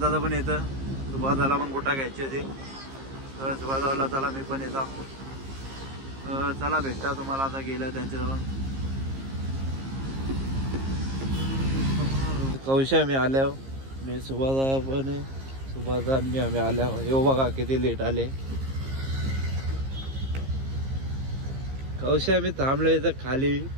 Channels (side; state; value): left; late; 15 ms